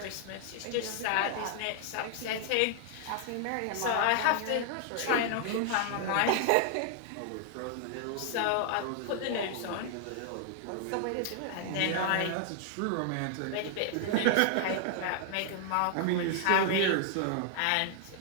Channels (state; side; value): different; both; correlation 0.00